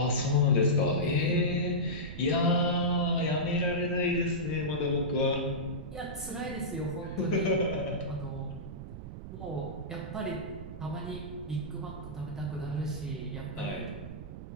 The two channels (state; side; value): noise; right; rumble, 10 dB below the sound